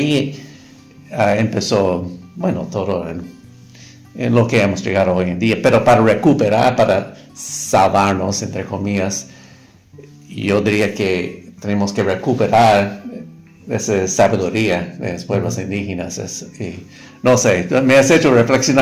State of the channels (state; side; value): identical; both; correlation 1.00